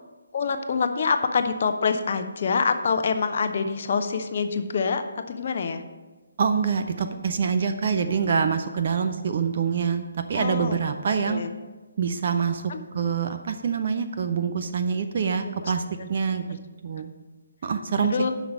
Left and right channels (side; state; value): both; inverted; correlation -0.68